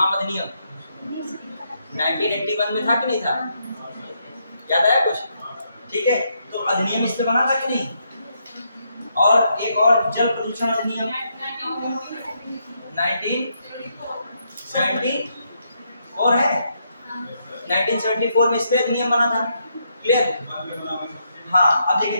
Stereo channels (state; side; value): inverted; both; correlation -0.78